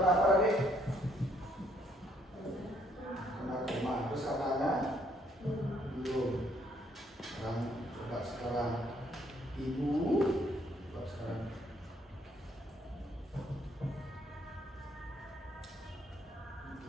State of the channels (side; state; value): both; normal; correlation 0.68